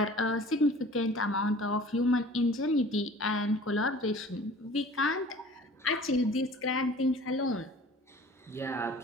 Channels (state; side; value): normal; both; correlation 0.46